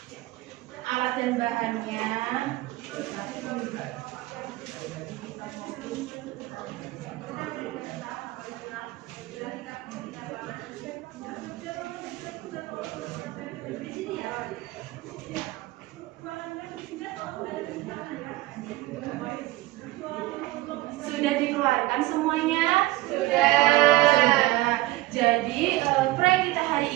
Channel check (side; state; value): left; quieter; 18.4 dB